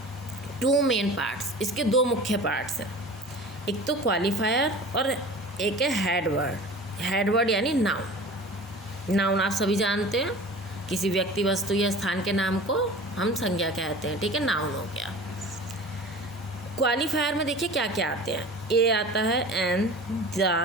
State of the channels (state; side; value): normal; both; correlation 0.39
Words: 2 मेन पार्ट्स, इसके 2 मुख्य पार्ट्स हैं। एक तो क्वालिफायर और एक है हेड वर्ड। हेड वर्ड यानी नाउन। नाउन आप सभी जानते हैं, किसी व्यक्ति वस्तु या स्थान के नाम को हम संज्ञा कहते हैं। ठीक है, नाउन हो गया। क्वालिफायर में देखिए क्या क्या आते हैं। ए आता है an,